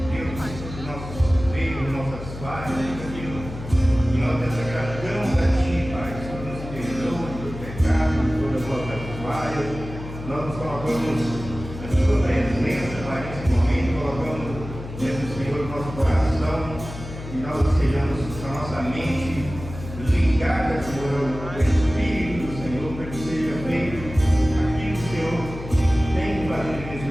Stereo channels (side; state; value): left; noise; hum, 11 dB below the sound